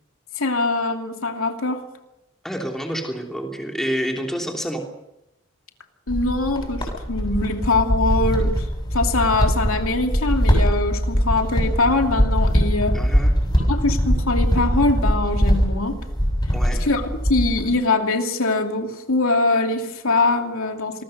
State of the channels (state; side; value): normal; both; correlation 0.42